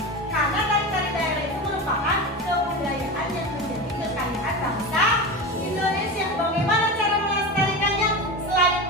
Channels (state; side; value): normal; both; correlation 0.24